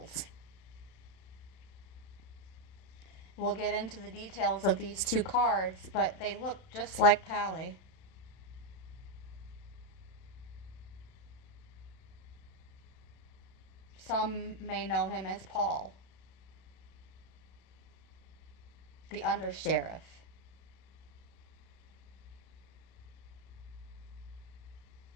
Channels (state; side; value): late; right; 31 ms